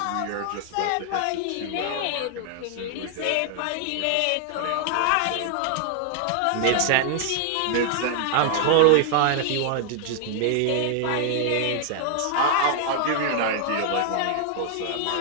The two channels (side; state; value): both; different; correlation 0.00